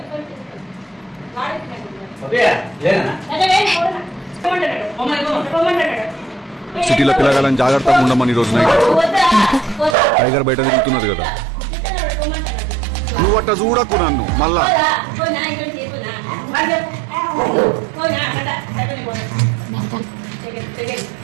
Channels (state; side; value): drops out; left; at 10.0 s